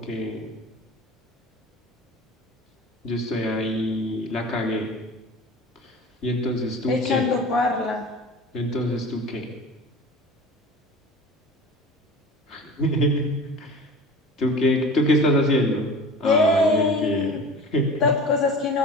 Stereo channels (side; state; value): both; normal; correlation 0.37